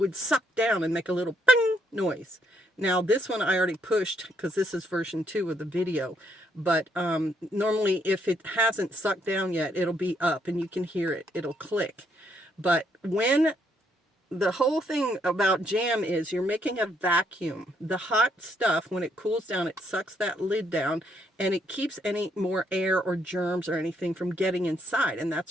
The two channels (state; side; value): normal; both; correlation 0.73